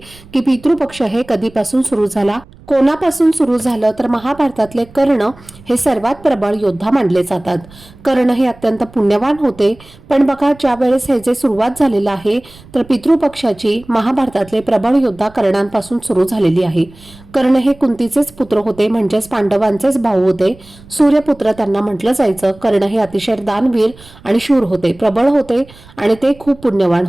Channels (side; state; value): right; noise; rumble, 23 dB below the sound